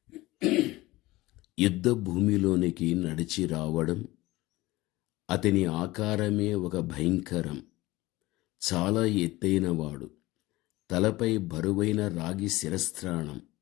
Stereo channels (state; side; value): quieter; right; 19.2 dB